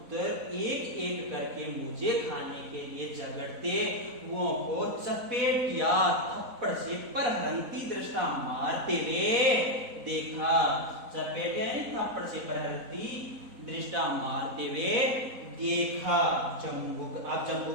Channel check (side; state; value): left; late; 4.0 ms